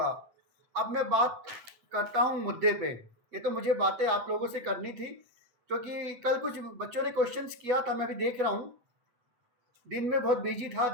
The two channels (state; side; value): late; left; 8.3 ms